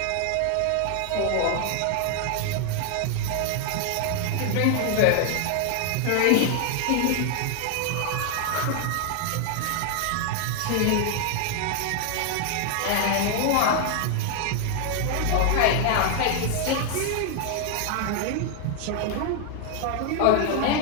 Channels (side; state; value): both; different; correlation 0.00